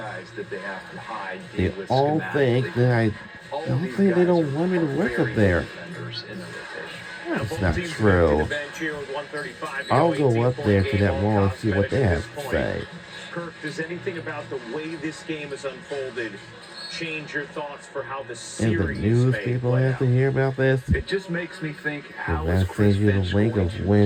that they have to hide. They deal with all schematically. think that I All of don't these think they guys don't are want me to work up very there. good defenders in the rotation. That's not true. I'll go up there to that wall and see what they have to say. Kirk, does anything about the way this game has unfolded change your thoughts for how the And series the news may people play have to out? hear about this. It just makes me think how Because is that Chris sends you the Finch link going of to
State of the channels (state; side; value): identical; both; correlation 1.00